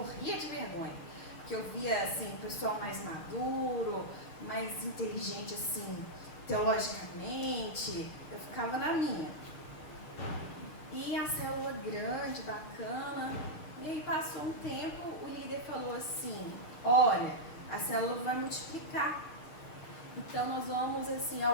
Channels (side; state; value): right; late; 6.3 ms